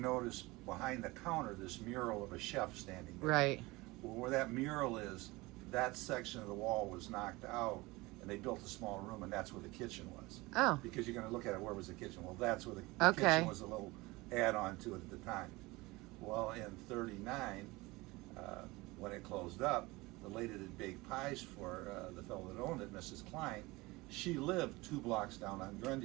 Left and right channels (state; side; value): quieter; left; 22.0 dB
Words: behind the counter this mural of a chef standing there. Right. Well, where that mural is, that section of the wall was knocked out, and they built a small room, and that's where the kitchen was. Oh. Because you're going to look at it, where was the kitchen? Well, that's where the Okay. kitchen was, a little add-on to it at the time. Well, in 39, when it closed up, the lady that baked pies for the fellow that owned it, Mrs. Klein, she lived 2 blocks down on